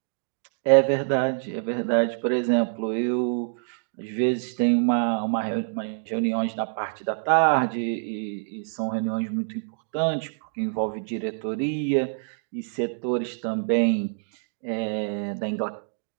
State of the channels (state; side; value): silent; left; digital silence